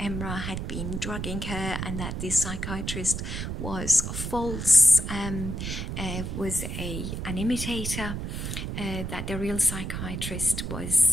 had been drugging her and that this psychiatrist was false, was an imitator, that the real psychiatrist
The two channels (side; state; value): right; noise; rumble, 4 dB below the sound